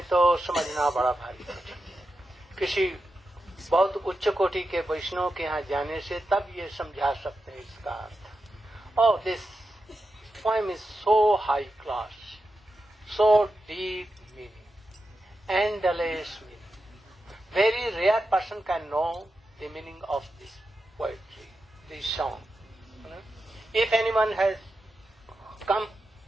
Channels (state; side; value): normal; both; correlation 0.89